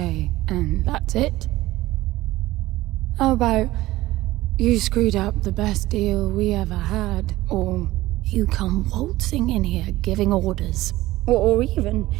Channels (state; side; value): quieter; left; 17.1 dB